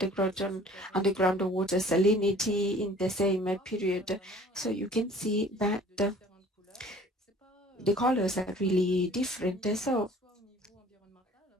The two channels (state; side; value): normal; both; correlation 0.50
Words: water salinity in the same period. So you can see that the colors are really different. So